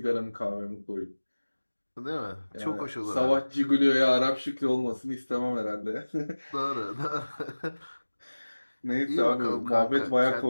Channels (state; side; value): inverted; both; correlation -1.00